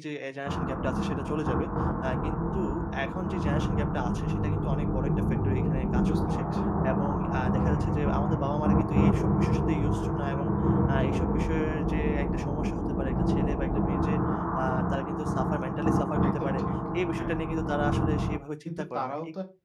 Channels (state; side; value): identical; both; correlation 1.00